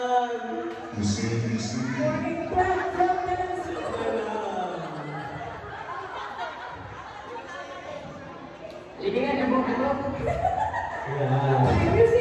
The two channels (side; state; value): both; identical; correlation 1.00